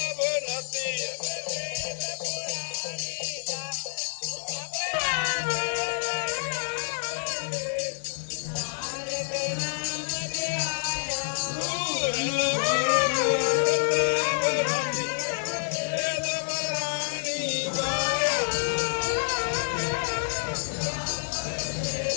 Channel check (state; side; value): silent; right; 59 dB below the other